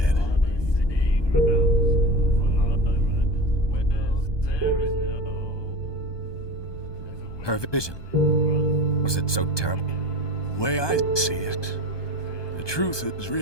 Her vision. Was it so terrible? The way I see it, the truth is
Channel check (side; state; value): right; late; 1.2 ms